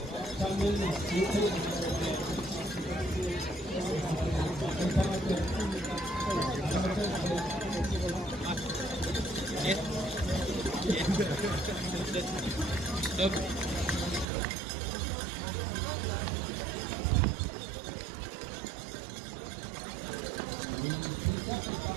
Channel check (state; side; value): drops out; left; at 14.2 s